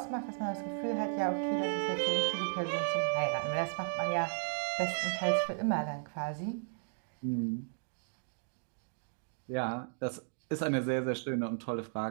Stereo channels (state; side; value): silent; left; digital silence